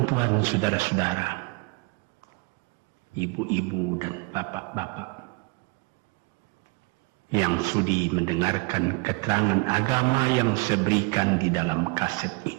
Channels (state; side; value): quieter; left; 27.2 dB